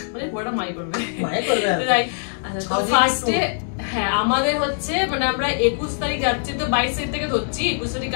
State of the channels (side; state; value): right; silent; digital silence